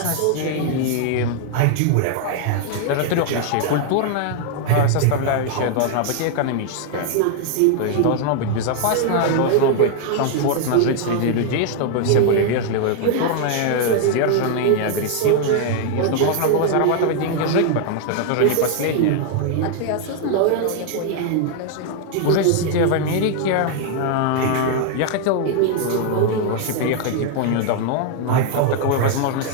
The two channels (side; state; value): both; different; correlation 0.00